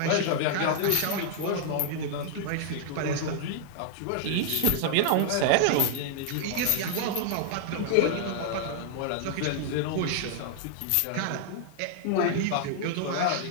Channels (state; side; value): different; both; correlation -0.01